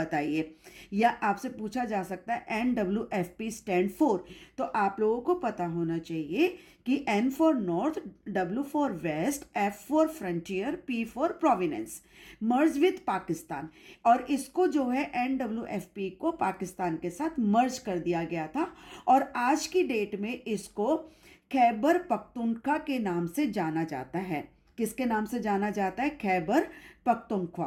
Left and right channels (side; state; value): both; identical; correlation 1.00